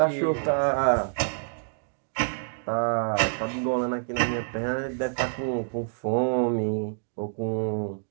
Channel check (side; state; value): left; silent; digital silence